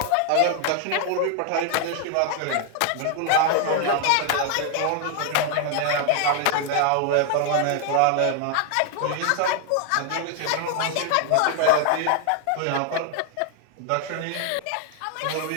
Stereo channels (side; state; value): both; different; correlation 0.00